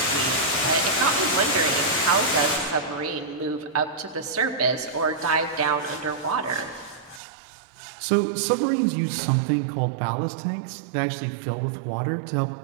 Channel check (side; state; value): left; drops out; at 7.2 s